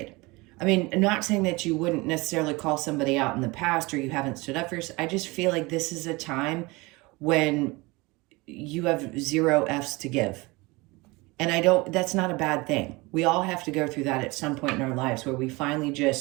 I mean, I'm not saying that you wouldn't necessarily call somebody out in the past or you haven't stood up for yourself. I just feel like this is a time when you have zero F's to give. And that's not a bad thing. We all have to go through that at some point in our lives where we finally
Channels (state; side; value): quieter; left; 23.8 dB